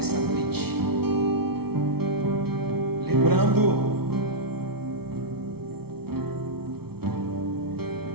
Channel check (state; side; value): late; left; 0.95 ms